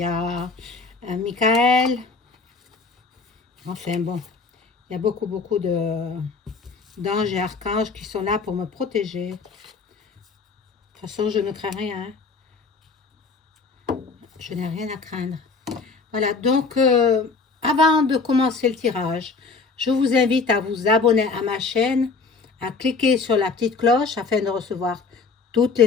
a Michael. Enfin bon, il y a beaucoup d'anges et archanges qui sont là pour me protéger. De toute façon, je ne crains rien. Je n'ai rien à craindre. Voilà, donc avant de commencer le tirage, je vous invite à vous abonner à ma chaîne, à cliquer sur la petite cloche afin de recevoir toutes les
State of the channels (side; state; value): right; quieter; 4.5 dB